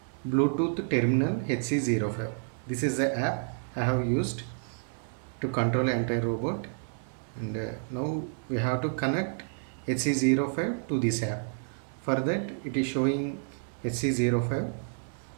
Bluetooth terminal HC05. This is the app I have used to control entire robot. And now we have to connect HC05 to this app. For that it is showing HC05.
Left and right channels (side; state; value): left; silent; digital silence